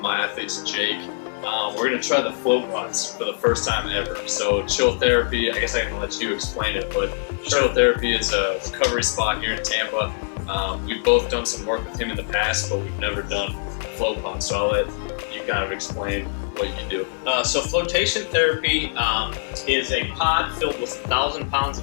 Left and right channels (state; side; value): silent; right; 63 dB below the other